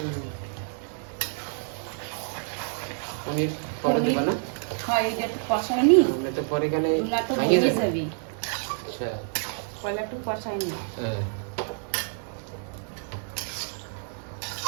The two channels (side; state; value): left; silent; 59 dB below the other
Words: পনির পরে দেবা না? হয় এটা একটু কষাই নি, আমরা তো পরে গেলে না তো ভাঙিয়ে ভেঙে যাবে। যাবি। আচ্ছা পয়লা একটু কষাই নি। হ্যাঁ